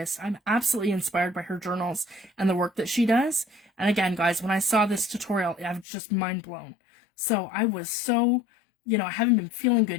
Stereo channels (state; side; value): drops out; right; at 5.9 s